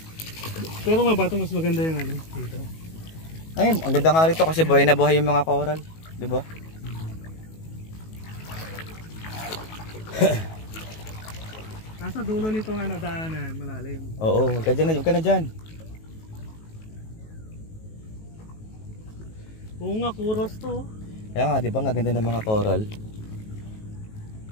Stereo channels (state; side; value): late; right; 19 ms